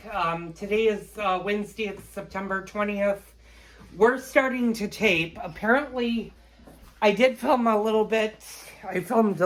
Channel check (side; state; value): both; identical; correlation 1.00